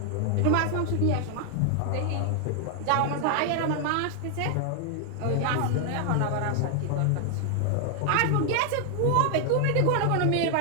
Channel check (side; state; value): both; different; correlation 0.00